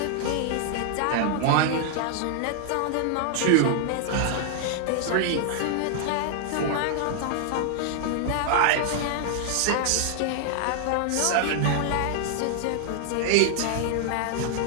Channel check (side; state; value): both; different; correlation 0.00